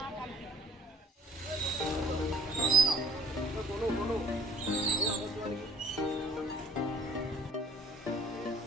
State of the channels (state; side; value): normal; both; correlation 0.57